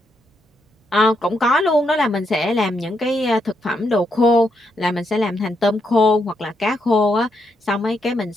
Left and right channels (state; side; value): normal; both; correlation 0.79